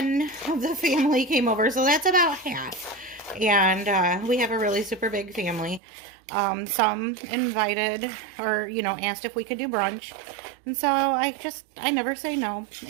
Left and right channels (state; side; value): drops out; left; at 5.8 s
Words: of the family came over, so that's about half. And we have a really super big family. Some invited or, asked if we could do brunch. And so I never say no.